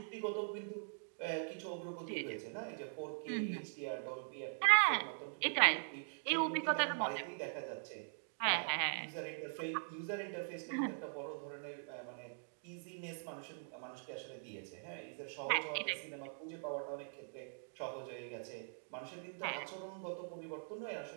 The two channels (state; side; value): silent; left; digital silence